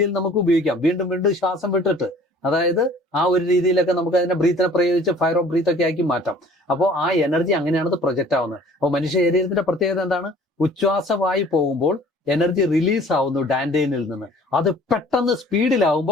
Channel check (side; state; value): both; normal; correlation 0.51